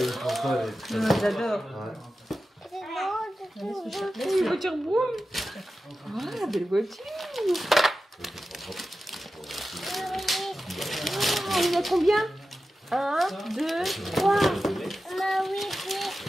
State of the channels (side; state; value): both; normal; correlation 0.93